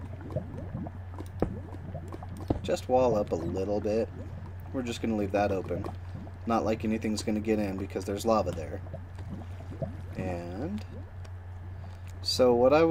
just wall up a little bit. We're just going to leave that open. Not like anything's going to get in because there's lava there. And so what I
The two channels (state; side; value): identical; both; correlation 1.00